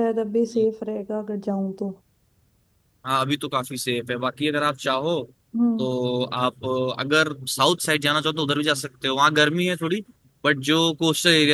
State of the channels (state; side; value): identical; both; correlation 1.00